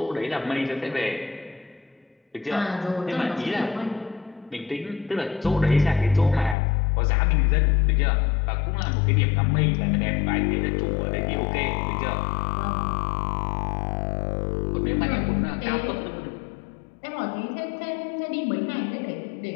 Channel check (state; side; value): drops out; right; at 6.6 s